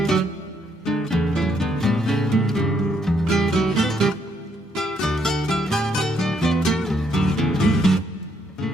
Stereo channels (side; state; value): both; normal; correlation 0.72